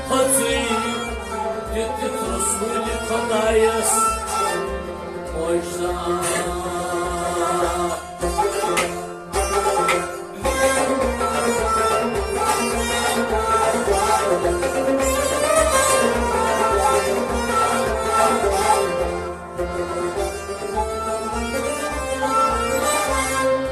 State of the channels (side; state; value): both; identical; correlation 1.00